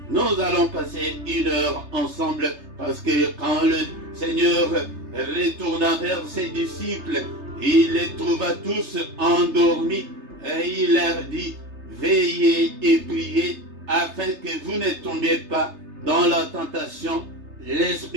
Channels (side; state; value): left; late; 3.3 ms